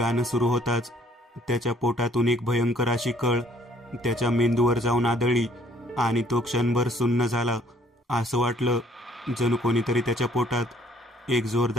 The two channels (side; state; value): both; normal; correlation 0.61